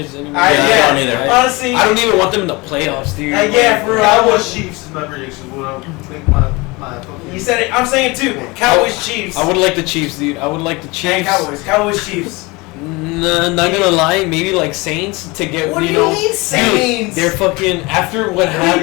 anymore. I don't either. Honestly, I don't even want them in the playoffs, dude. yeah, for real. Cowboys Chiefs is my prediction. What I'll make my fucking. You said it. I'm saying it too. Cowboys, Chiefs. I would like the Chiefs, dude. I would like the And Chiefs. Cowboys, Chiefs. Nah, not gonna lie, maybe like Saints to get What do you know. mean Saints? Dude, they're fucking after what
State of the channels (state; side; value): quieter; right; 24.6 dB